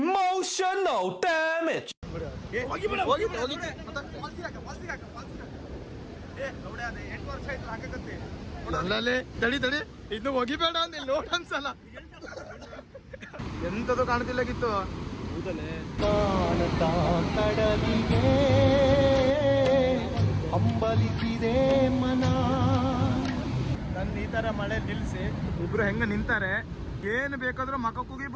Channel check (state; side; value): identical; both; correlation 1.00